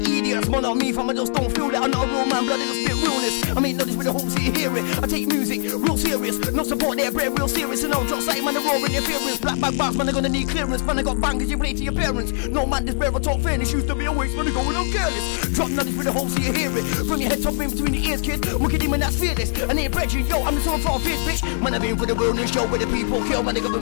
idiots. Man on me from I just don't feel it. I'm not a real man, blood, it'll spit realness. I mean, not this with the whole city hear it. I take music real serious, no support there, bread real serious. And I'll drop sight, man, the raw interference. Black bag bars, man, I'm gonna need clearance. Man, I got bangers, you play to your parents. No man, this bear, I talk fairness. Used to be a waste, man, I'm going on careless. Drop nothing with the whole city hear it. From your head top in between the ears, kid. Look at him and that's fearless. I ain't brethren, yo, I'm the sort of bitch, bitch. Man, I've been for the wilderness show where the people kill, man, the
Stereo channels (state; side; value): silent; right; 64 dB below the other